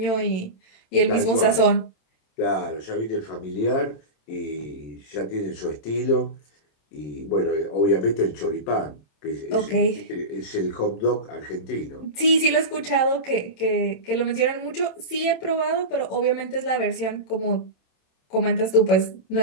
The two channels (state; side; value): late; right; 27 ms